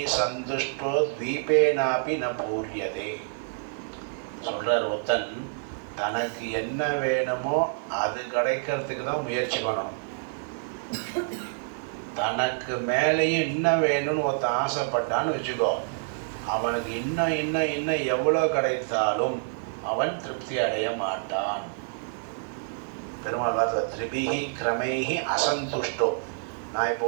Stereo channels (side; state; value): left; silent; digital silence